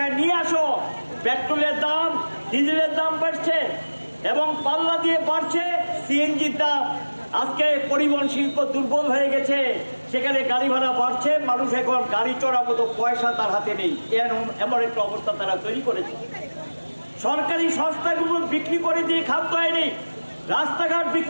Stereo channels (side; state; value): both; inverted; correlation -1.00